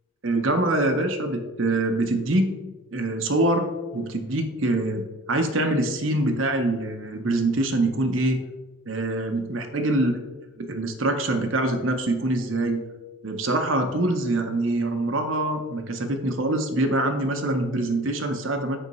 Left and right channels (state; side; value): normal; both; correlation 0.46